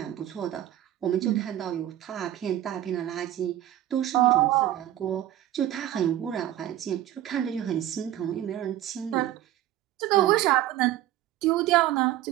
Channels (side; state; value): left; quieter; 13.2 dB